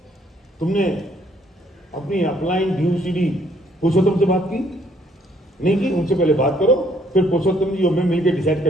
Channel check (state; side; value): normal; both; correlation 0.66